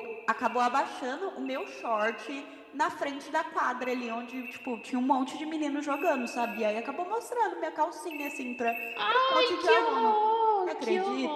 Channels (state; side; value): identical; both; correlation 1.00